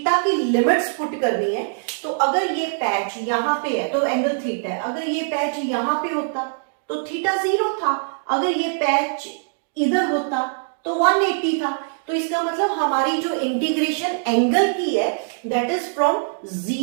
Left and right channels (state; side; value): silent; left; digital silence